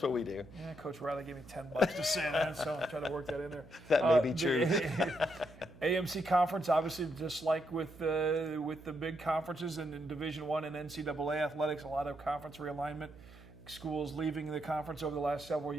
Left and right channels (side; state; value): right; noise; hum, 19 dB below the sound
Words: what we do. Yeah, Coach Riley gave me $10 to say that, so I'm trying to work that in there. That may be true. AMC conference, obviously, just like with the big conferences in Division I and NCAA athletics, a lot of conference realignment. Schools leaving the conference over the last several